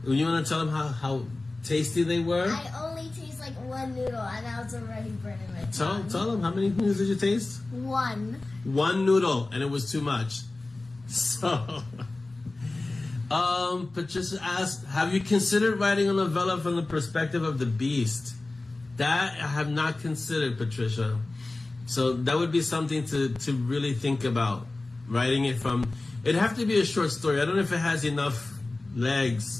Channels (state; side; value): quieter; right; 3.1 dB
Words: You want to tell them how tasty they were? I only taste like one noodle and I was already burning my tongue. Tell them, how many noodles did you taste? One. One noodle, and it was too much. So, Patricia asked, have you considered writing a novella from the perspective of the beast? That I have not considered, Patricia. So that would be something to really think about. Writing it from, it'd have to be a short story. I don't know if it has enough